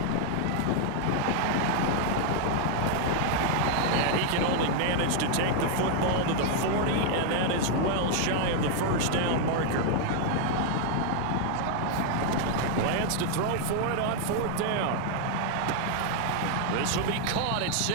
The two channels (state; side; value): different; both; correlation 0.00